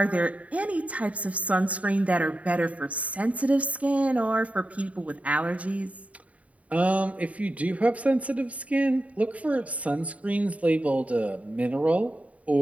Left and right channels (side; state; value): left; late; 0.068 ms